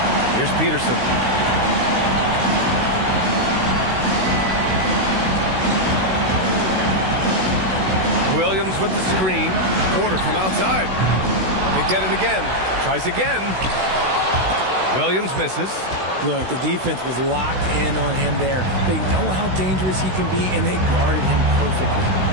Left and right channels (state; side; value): late; left; 16 ms